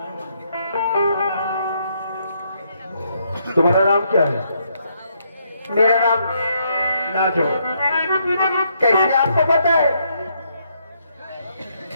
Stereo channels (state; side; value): inverted; both; correlation -0.74